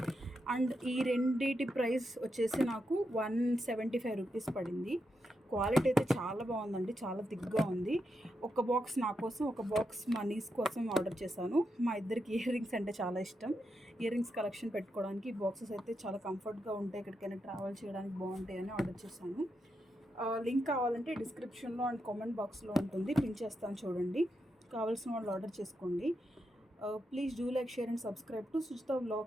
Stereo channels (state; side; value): normal; both; correlation 0.84